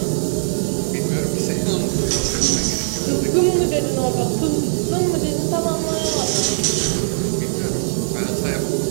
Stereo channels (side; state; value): left; silent; 66 dB below the other